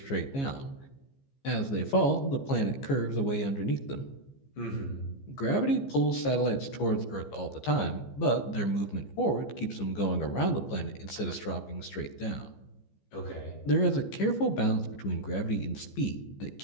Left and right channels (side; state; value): right; late; 15 ms